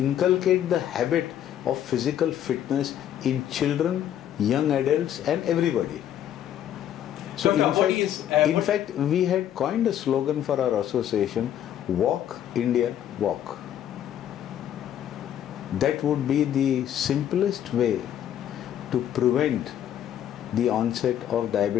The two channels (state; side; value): quieter; right; 10.6 dB